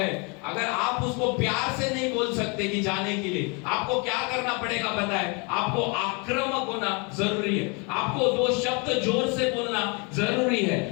अगर आप उसको प्यार से नहीं बोल सकते कि जाने के लिए, आपको क्या करना पड़ेगा पता है, आपको आक्रामक होना जरूरी है। आपको दो शब्द जोर से बोलना जरूरी है,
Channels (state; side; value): quieter; right; 32.2 dB